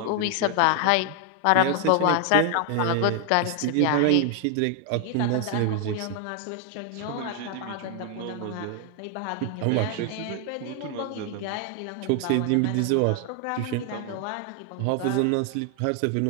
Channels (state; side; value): different; both; correlation 0.00